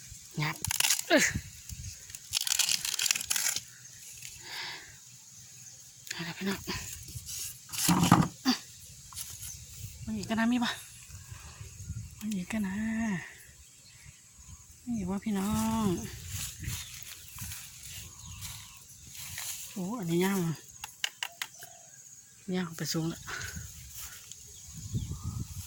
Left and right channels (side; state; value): both; identical; correlation 1.00